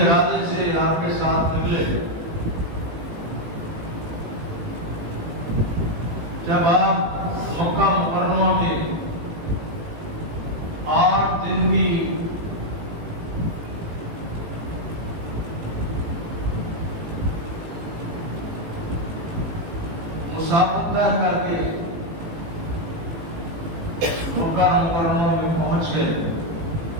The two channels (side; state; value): left; late; 18 ms